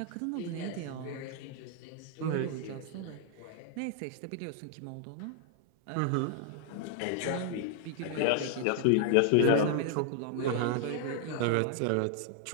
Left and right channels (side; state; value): both; different; correlation 0.00